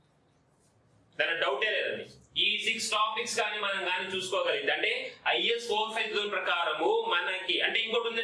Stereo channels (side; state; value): both; identical; correlation 1.00